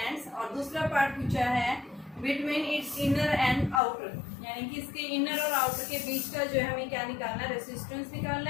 और दूसरा पार्ट पूछा है, between its inner and outer, यानी कि इसके इनर और आउटर के बीच का जो है हमें क्या निकालना है, रेसिस्टेंस निकालना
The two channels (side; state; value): right; drops out; at 3.8 s